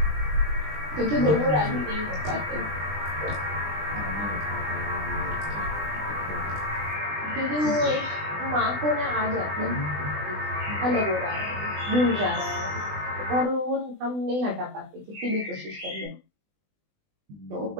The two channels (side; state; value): left; late; 20 ms